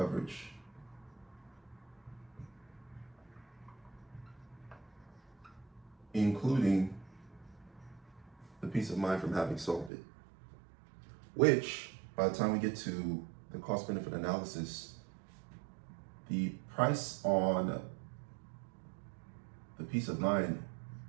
Including the peace of mind from having solved it. Which, by the time we get to the cost benefit analysis, the price on the peace of mind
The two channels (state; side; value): drops out; left; at 9.9 s